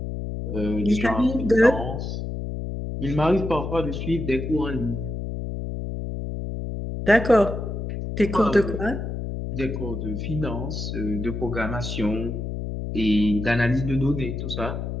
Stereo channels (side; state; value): left; noise; hum, 5 dB below the sound